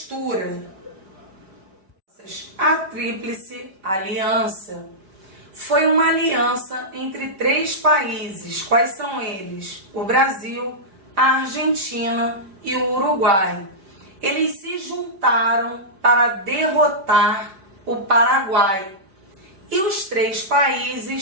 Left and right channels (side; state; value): left; late; 5.3 ms